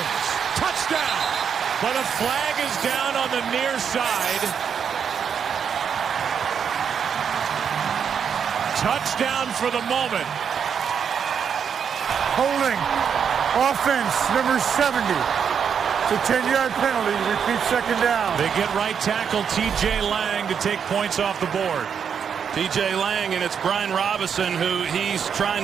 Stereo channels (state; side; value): quieter; left; 7.3 dB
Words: Touchdown. But a flag is down on the near side. Touchdown for the moment. Holding. Offense, number 70. It's a 10-yard penalty. Repeat second down. They get right tackle T.J. Lang to take points off the board. T.J. Lang, and it's Brian Robinson who he's trying